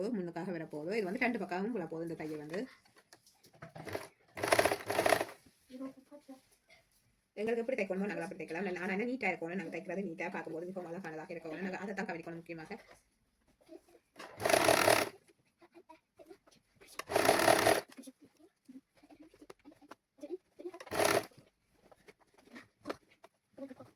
முன்னுக்காக வரப்போதோ இது வந்து 2 பக்கமும் போட போதும். இந்த தையல் வந்து எங்களுக்கு எப்படி தைக்கணுமோ நாங்கள் அப்படி தைக்கலாம். ஆனால் என்ன நீட்டாக இருக்கணும். நாங்கள் தைக்கிறது நீட்டாக பார்க்கும்போது மிகவும் அழகானதாக இருக்கணும். நாங்கள் அதை தான் கவனிக்கணும் முக்கியமாக.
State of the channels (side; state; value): both; identical; correlation 1.00